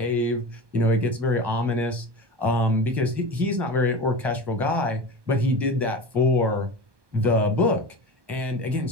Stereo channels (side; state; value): left; late; 1.2 ms